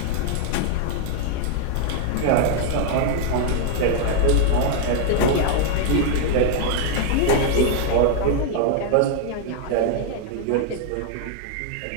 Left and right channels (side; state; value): both; different; correlation 0.00